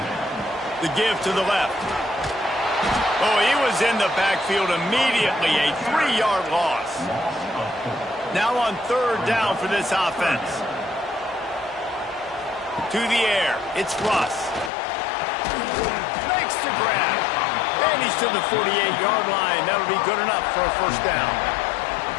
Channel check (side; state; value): right; drops out; at 14.7 s